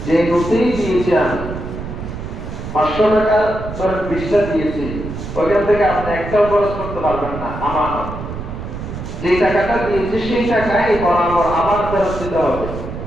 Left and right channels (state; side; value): noise; right; rumble, 8 dB below the sound